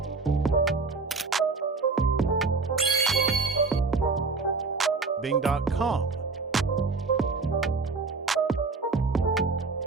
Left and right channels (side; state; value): left; quieter; 4.2 dB